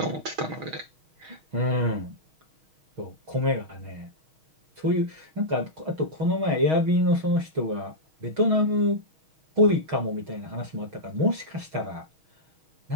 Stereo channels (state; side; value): late; left; 6.3 ms